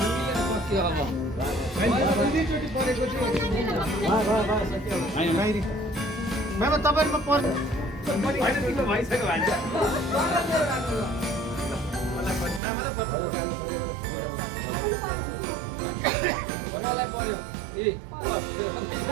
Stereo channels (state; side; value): drops out; left; at 12.6 s